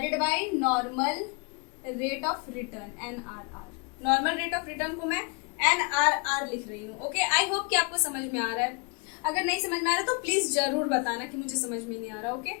by normal rate of return, NRR। Normal rate of return को मैं NRR लिख रही हूँ, ओके। आई होप कि आपको समझ में आ रहा है। अगर नहीं समझ में आ रहा तो प्लीज जरूर बताना कि मुझे समझ में नहीं आ रहा, ओके।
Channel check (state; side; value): quieter; right; 32.7 dB